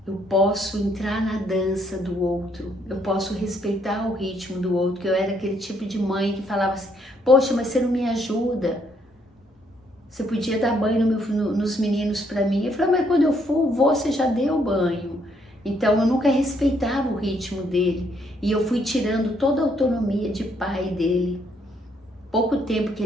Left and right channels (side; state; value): both; normal; correlation 0.71